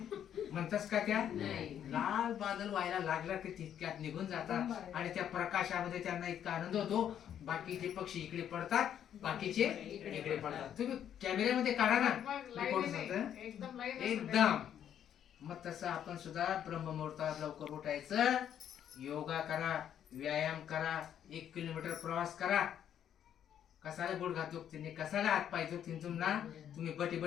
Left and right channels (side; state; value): right; quieter; 9.7 dB